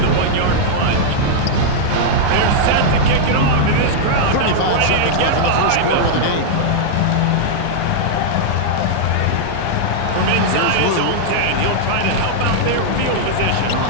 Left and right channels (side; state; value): both; different; correlation -0.01